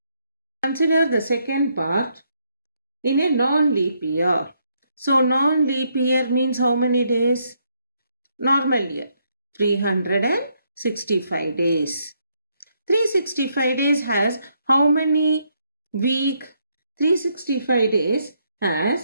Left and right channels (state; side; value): inverted; both; correlation -0.75